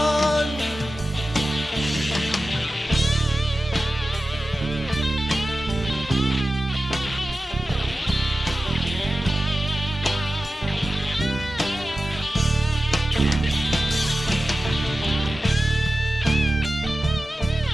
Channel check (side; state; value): both; normal; correlation 0.94